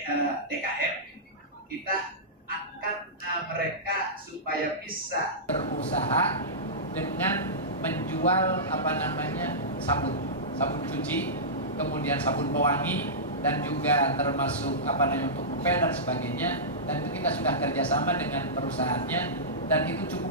DKM. Kita akan mereka supaya bisa berusaha dengan menjual sabun cuci, kemudian sabun pewangi, dan juga termasuk untuk ngepel dan sebagainya. Dan itu kita sudah kerjasama dengan perusahaannya, dan itu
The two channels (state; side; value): normal; both; correlation -0.16